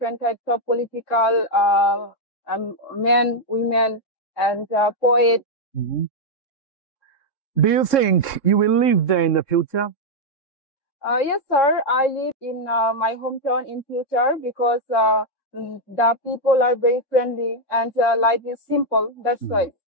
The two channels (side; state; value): right; late; 3.7 ms